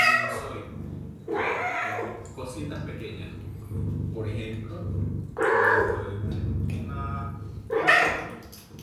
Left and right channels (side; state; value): both; identical; correlation 1.00